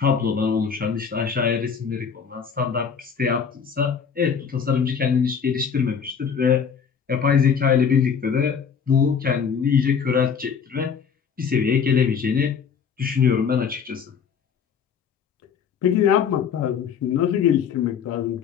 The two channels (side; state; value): right; quieter; 6.8 dB